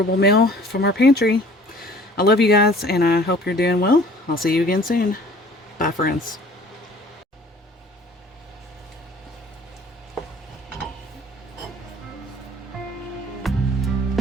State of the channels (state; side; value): normal; both; correlation 0.51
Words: meal from our pantry. I love you guys, and I hope you're doing well. I'll see you again soon. Bye, friends.